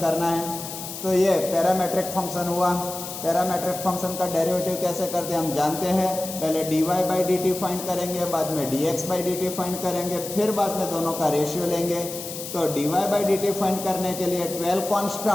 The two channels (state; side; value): noise; left; hiss, 9 dB below the sound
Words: है। तो ये parametric function हुआ। Parametric function का derivative कैसे करते हैं हम जानते हैं। पहले dy by dt फाइंड करेंगे, बाद में dx by dt फाइंड करेंगे, फिर बाद में दोनों का रेशियो लेंगे। तो dy by dt फाइंड करने के लिए 12